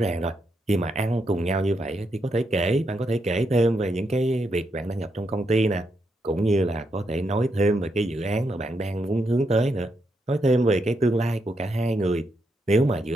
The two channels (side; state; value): both; normal; correlation 0.81